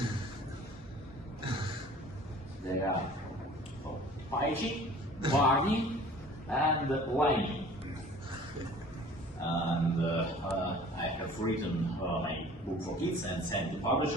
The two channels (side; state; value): both; normal; correlation 0.47